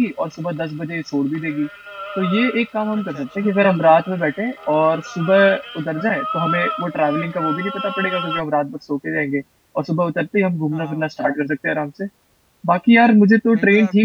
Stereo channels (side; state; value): both; identical; correlation 1.00